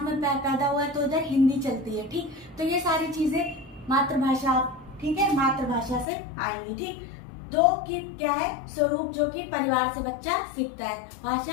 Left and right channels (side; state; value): right; drops out; at 6.1 s